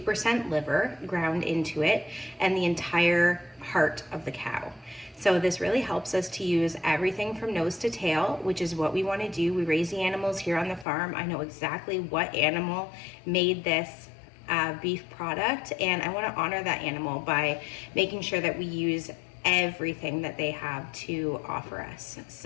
liver ground into it and the entire heart of the cow. So this really helps us to use everything from nose to tail, which is what we want to do. We raise the animals here on the farm. I know exactly what animal made this beef product, and I want to honor that animal by making sure that we use everything that they have to offer us.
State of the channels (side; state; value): right; drops out; at 10.9 s